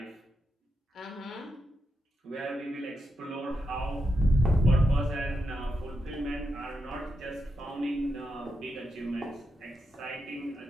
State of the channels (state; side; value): normal; both; correlation 0.85